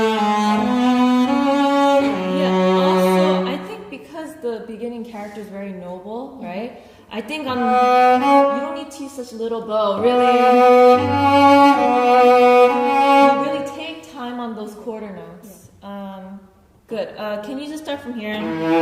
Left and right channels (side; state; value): both; identical; correlation 1.00